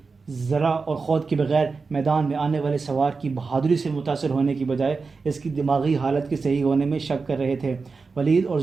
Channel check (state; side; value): quieter; left; 4.5 dB